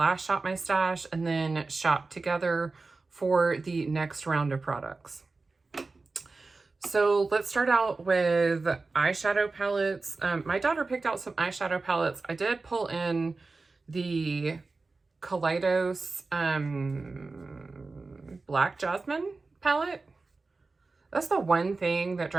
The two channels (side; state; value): left; quieter; 3.8 dB